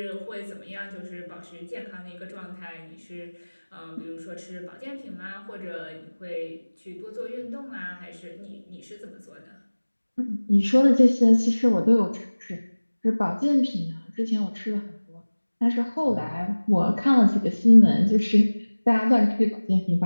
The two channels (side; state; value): both; inverted; correlation -1.00